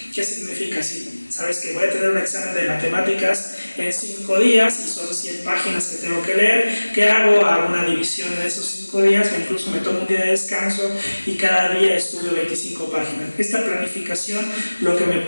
¿Qué significa? Si sabes que voy a tener un examen de matemáticas en 5 días y son 100 páginas que tengo que leer, ¿qué hago? Hago una división en esos 5 días, o incluso me tomo un día de descanso y cada día estudio 25 páginas. Esta planificación lo que me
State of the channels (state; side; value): inverted; both; correlation -1.00